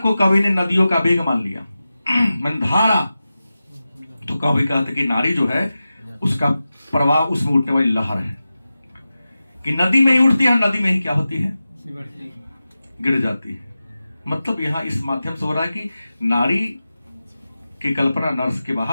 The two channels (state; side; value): inverted; both; correlation -0.94